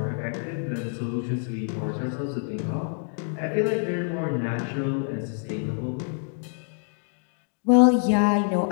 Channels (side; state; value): right; silent; 55 dB below the other